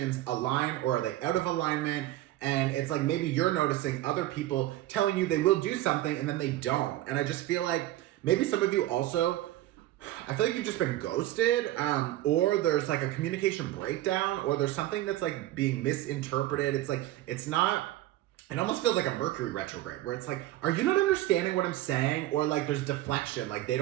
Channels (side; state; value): left; quieter; 15.0 dB